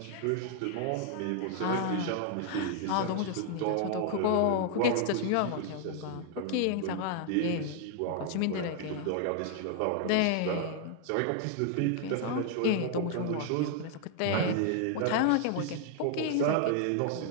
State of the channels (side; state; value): both; different; correlation 0.00